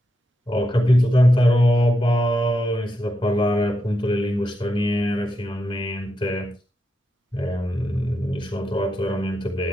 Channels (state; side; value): normal; both; correlation 0.85